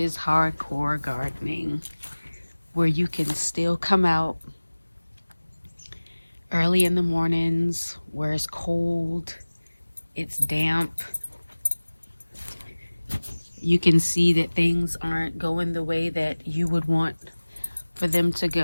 hardcore gardening, where you can still come out early in the mornings, where it's cold, it's damp. You can see that things aren't going the way that you would want for them to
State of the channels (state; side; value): inverted; both; correlation -1.00